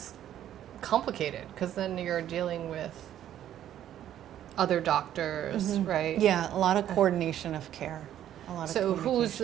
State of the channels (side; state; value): left; quieter; 11.3 dB